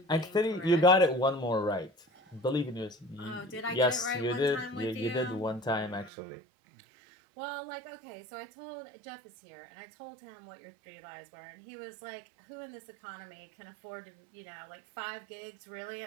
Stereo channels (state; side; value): drops out; left; at 6.1 s